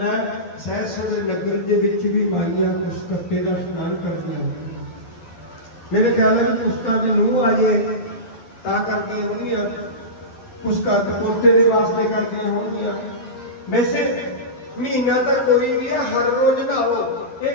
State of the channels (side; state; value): right; late; 12 ms